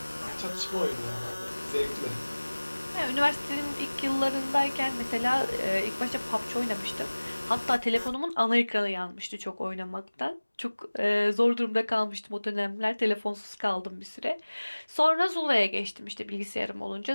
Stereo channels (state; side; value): inverted; both; correlation -1.00